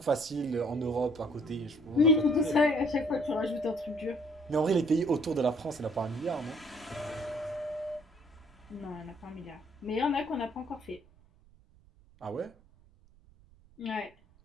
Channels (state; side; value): noise; right; rumble, 28 dB below the sound